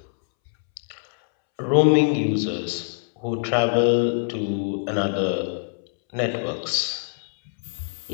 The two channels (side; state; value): right; silent; 63 dB below the other